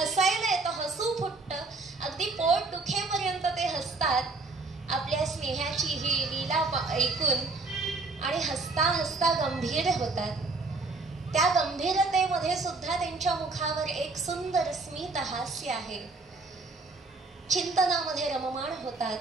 येतं, हसू फुटतं, अगदी पोट दुखेपर्यंत ते हसतात आपल्या स्नेहाची ही लीला ऐकून, आणि हसता हसता गंभीर होतात. त्या गंभीरतेमध्ये सुद्धा त्यांच्या मुखावर एक सुंदर स्मित हास्य आहे. चिंतनामध्ये रममाण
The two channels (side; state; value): left; quieter; 3.6 dB